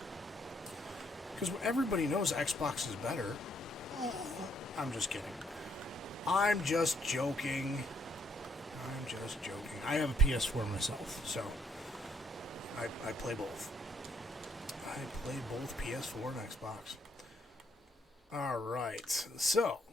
Because everybody knows Xbox is better. I'm just kidding. I'm just joking. I have a PS4 myself, so I play both. I play both PS4 and Xbox. Alright, so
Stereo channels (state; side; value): normal; both; correlation 0.70